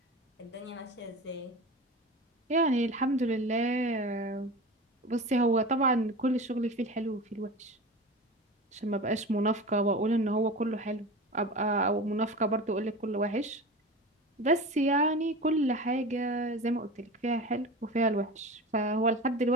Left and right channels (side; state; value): both; normal; correlation 0.31